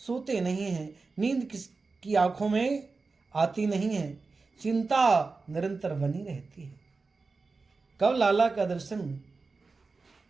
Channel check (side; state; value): left; quieter; 4.1 dB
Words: नहीं हैं, नींद किसकी आंखों में आती नहीं है, चिंता निरंतर बनी रहती है। कब लाला का दर्शन